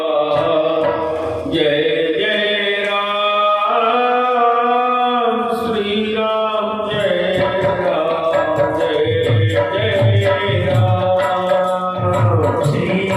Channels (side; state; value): both; identical; correlation 1.00